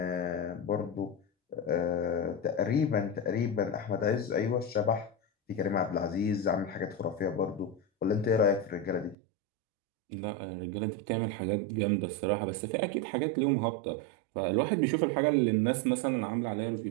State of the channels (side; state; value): left; drops out; at 9.2 s